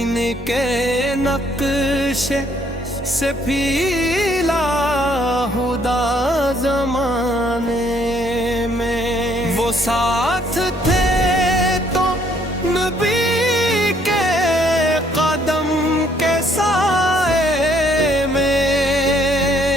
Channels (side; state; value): both; normal; correlation 0.66